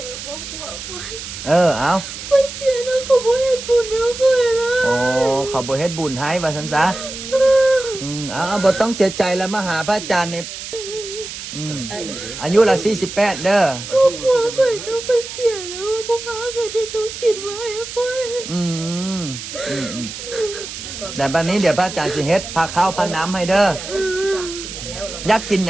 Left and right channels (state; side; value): noise; right; hiss, 10 dB below the sound